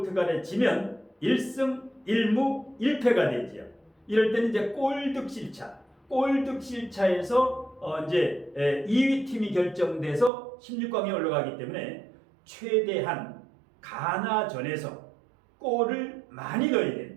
지면 1승 1무 1패가 되지요. 이럴 때는 이제 골득실차에서 이제 2위 팀이 결정돼서 16강에 올라가기 때문에 최대한 가나전에서 골을 많이 넣어야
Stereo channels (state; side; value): drops out; left; at 10.3 s